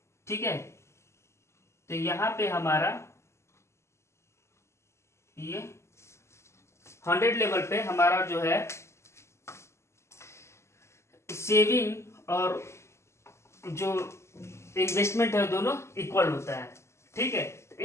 ठीक है, तो यहाँ पे हमारा ये 100 लेवल पे हमारा जो है सेविंग और जो इन्वेस्टमेंट है दोनों इक्वल होता है। ठीक है,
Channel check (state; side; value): late; right; 0.13 ms